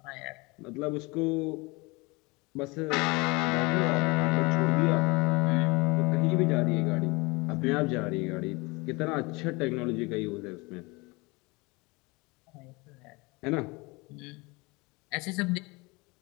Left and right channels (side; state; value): right; quieter; 25.6 dB